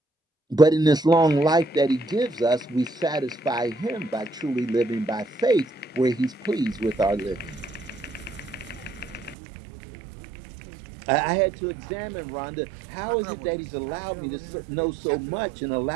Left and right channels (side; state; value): left; drops out; at 9.3 s